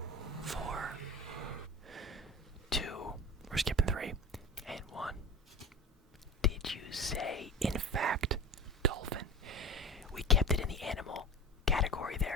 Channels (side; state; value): both; normal; correlation 0.34